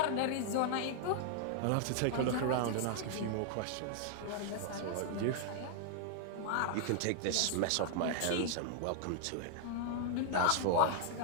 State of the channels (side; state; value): both; different; correlation 0.00